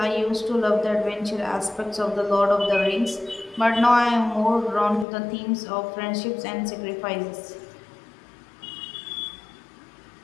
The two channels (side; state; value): right; drops out; at 5.1 s